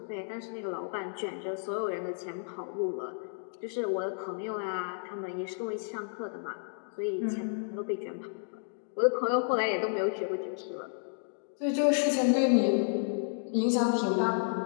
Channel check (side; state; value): right; silent; digital silence